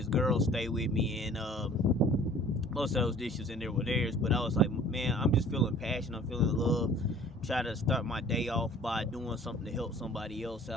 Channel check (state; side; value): normal; both; correlation 0.50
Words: girl stay with me, and most of those dishes in there were theirs. But I was like, man, I'm just feeling passion. I'm feeling love. Try to start my day off by doing something to help somebody else